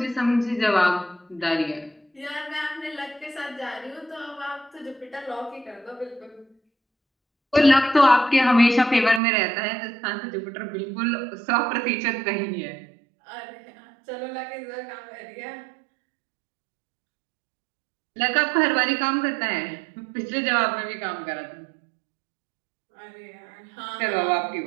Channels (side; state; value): left; drops out; at 9.2 s